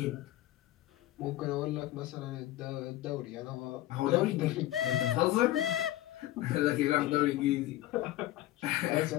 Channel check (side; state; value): right; quieter; 15.2 dB